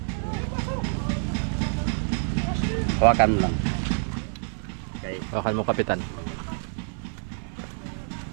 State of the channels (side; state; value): left; silent; 60 dB below the other